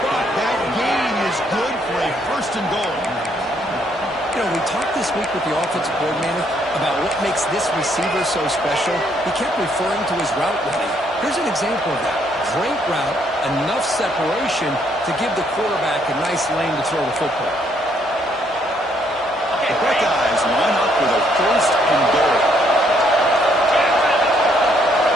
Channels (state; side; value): normal; both; correlation 0.70